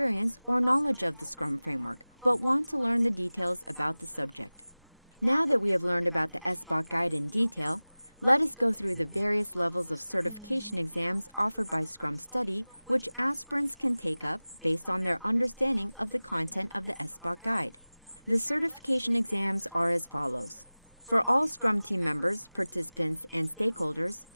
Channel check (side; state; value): both; inverted; correlation -0.99